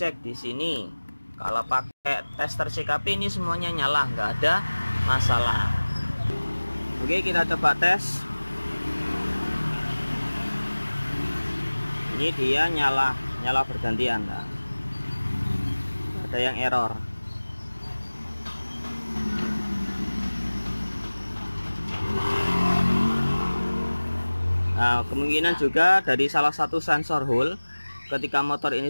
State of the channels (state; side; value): inverted; both; correlation -1.00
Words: di sini. Kalau pakai tester CKP ini semuanya nyala, nggak ada masalah. Oke, kita coba tes. Ini dia nyala bergantian. Nah, ada yang error. Nah, kemungkinan juga dari salah satu sensor hole ketika motor ini